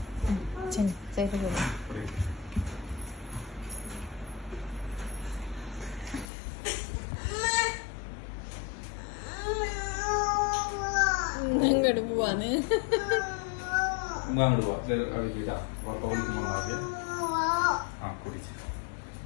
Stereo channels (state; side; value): drops out; right; at 6.2 s